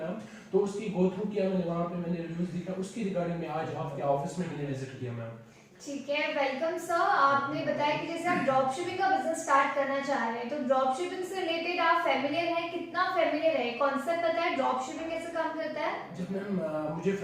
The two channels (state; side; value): identical; both; correlation 1.00